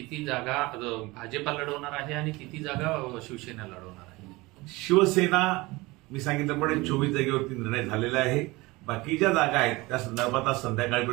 जागा भाजपा लढवणार आहे आणि किती जागा शिवसेना लढवणार आहे? शिवसेना मी सांगितल्याप्रमाणे 24 जागेवरती निर्णय झालेला आहे. बाकीच्या जागा आहेत त्या संदर्भात आज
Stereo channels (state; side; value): quieter; left; 22.1 dB